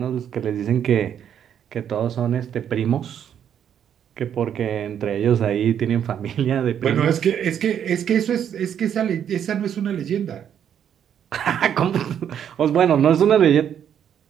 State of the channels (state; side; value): quieter; left; 9.1 dB